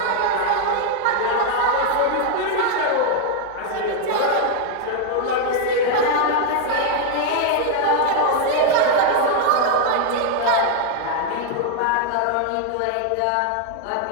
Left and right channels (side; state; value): both; different; correlation 0.00